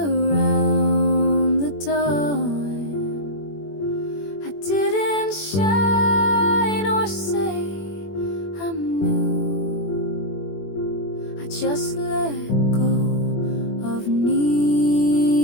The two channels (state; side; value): late; right; 21 ms